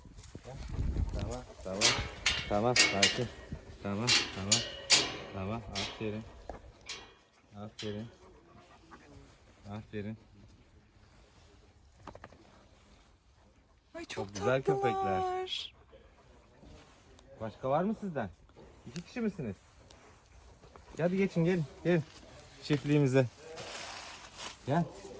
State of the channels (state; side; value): identical; both; correlation 1.00